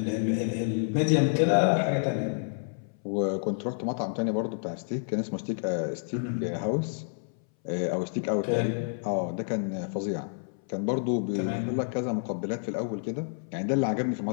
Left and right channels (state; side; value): silent; right; 59 dB below the other